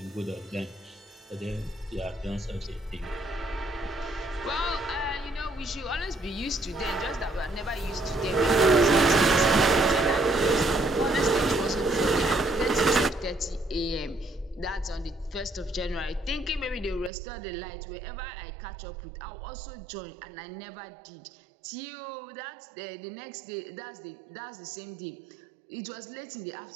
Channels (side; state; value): left; drops out; at 17.1 s